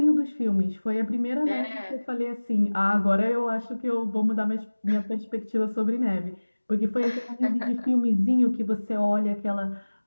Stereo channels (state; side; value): inverted; both; correlation -1.00